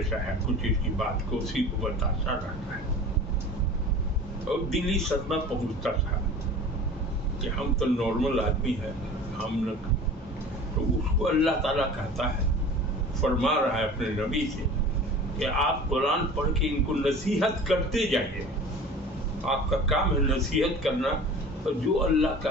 ہے، کچھ اس کی بات کو اسی کو بتاتا رہتا ہے. اور دلی صدمہ پہنچتا تھا کہ ہم تو نارمل آدمی ہیں، ہم نہ. تو اس کو اللہ تعالیٰ کہتا ہے، فرما رہا ہے اپنے نبی سے کہ آپ قرآن پڑھ کے ان کو نصیحت کرتے جائیے. آپ کا کام ہے نصیحت کرنا، اور جو اللہ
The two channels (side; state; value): both; normal; correlation 0.40